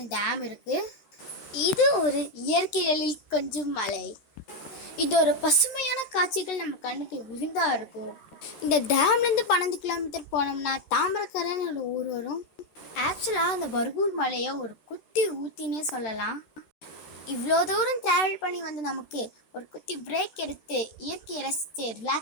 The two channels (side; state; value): right; late; 13 ms